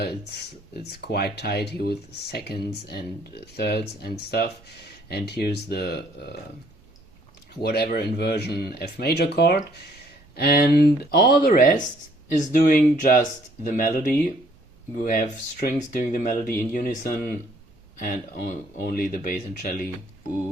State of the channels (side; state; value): both; normal; correlation 0.63